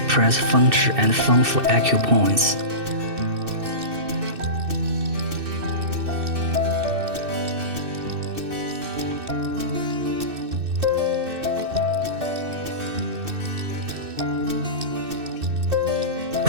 press puncture and form for acupoints.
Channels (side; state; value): left; late; 2.6 ms